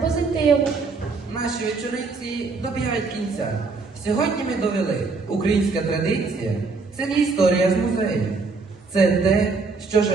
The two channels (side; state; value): left; quieter; 4.2 dB